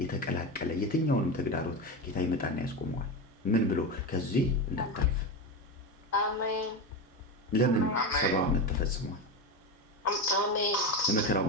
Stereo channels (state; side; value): normal; both; correlation 0.19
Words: የተቀላቀለ የትኛውንም ተግዳሮት ጌታ ይመጣና ያስቆመዋል። ምን ብሎ? ከዚህ እንዳታልፍ። አሜን። ለምን? 70 ዓመት ተፈጽሟል። አሜን። የመከራው